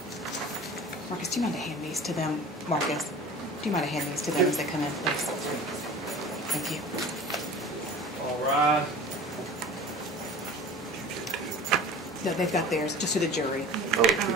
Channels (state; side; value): normal; both; correlation 0.40